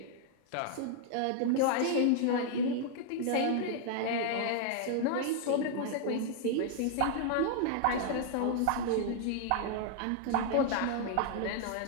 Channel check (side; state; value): both; different; correlation 0.00